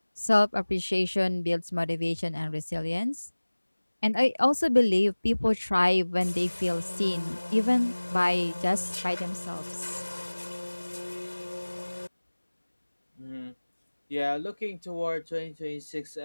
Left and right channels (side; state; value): both; inverted; correlation -1.00